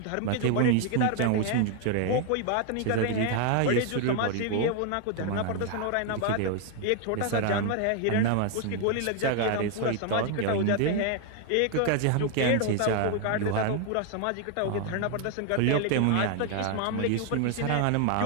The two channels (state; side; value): different; both; correlation 0.00